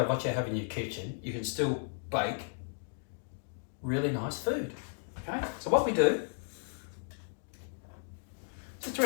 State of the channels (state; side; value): silent; right; digital silence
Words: what you have in your kitchen, you can still bake really nice food. Okay, so what we do, just